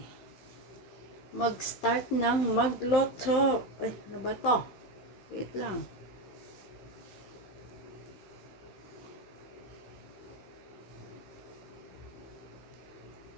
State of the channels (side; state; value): right; late; 15 ms